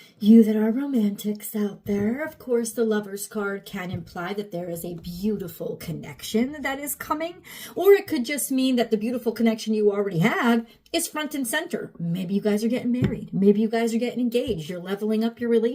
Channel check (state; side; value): identical; both; correlation 1.00